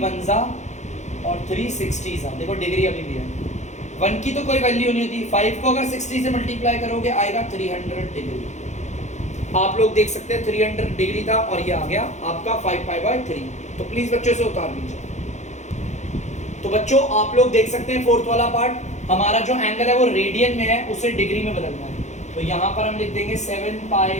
1 ज़ा और 3 60 ज़ा, देखो डिग्री अभी भी है, 1 की तो कोई वैल्यू नहीं होती, 5 को अगर 60 से मल्टीप्लाई करोगे आएगा 300 डिग्री। आप लोग देख सकते हैं 300 डिग्री था और ये आ गया आपका 5π/3। तो प्लीज बच्चों से उतार लीजिए। तो बच्चों आप लोग देख सकते हैं फोर्थ वाला पार्ट, हमारा जो एंगल है वो रेडियन में है, उसे डिग्री में बदलना है। तो यहाँ पर हम लिख देंगे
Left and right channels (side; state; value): right; late; 0.34 ms